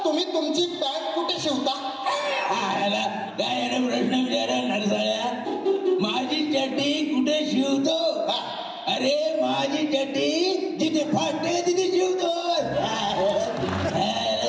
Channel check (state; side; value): identical; both; correlation 1.00